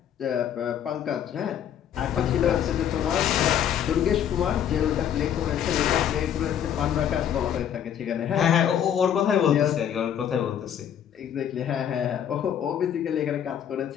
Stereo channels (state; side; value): quieter; right; 9.5 dB